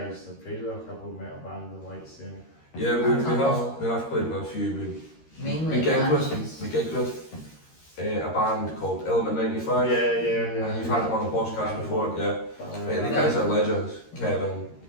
have played with a couple of metal bands and lights there. Yeah, we have played with a few. Mainly We gigged Apaches. with a band called Element 95. Yeah. You've had them on the podcast before, yeah. The guys are legends, Kevin,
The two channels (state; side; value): late; right; 13 ms